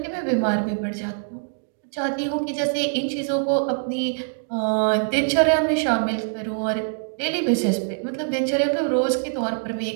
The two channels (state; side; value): silent; left; digital silence